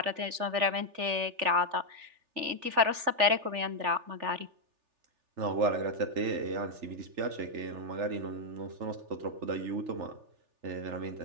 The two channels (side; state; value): left; late; 3.4 ms